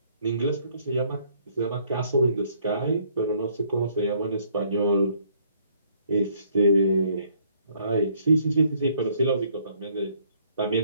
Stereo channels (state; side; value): inverted; both; correlation -0.65